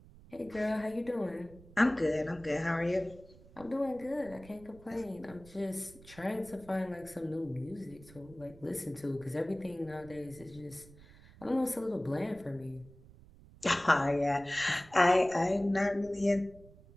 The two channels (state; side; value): noise; right; rumble, 21 dB below the sound